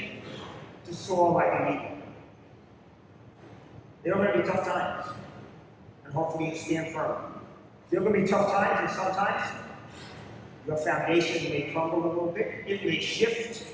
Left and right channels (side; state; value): both; identical; correlation 1.00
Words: To soar like an eagle. There are going to be tough times. And hopefully you stand firm. There are going to be tough times, and sometimes your foundation may crumble a little bit. It may shift.